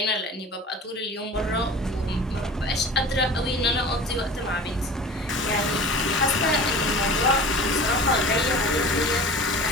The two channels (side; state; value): both; normal; correlation 0.39